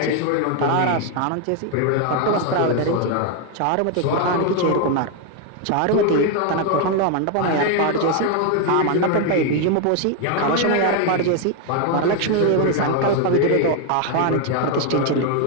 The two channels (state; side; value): different; both; correlation 0.01